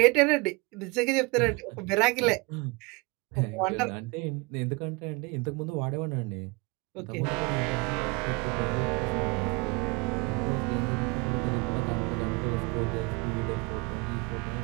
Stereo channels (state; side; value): quieter; left; 27.4 dB